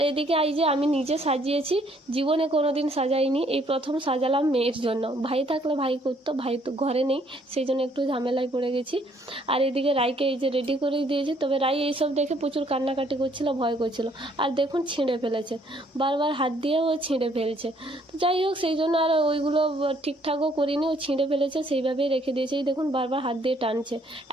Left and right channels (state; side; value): normal; both; correlation 0.65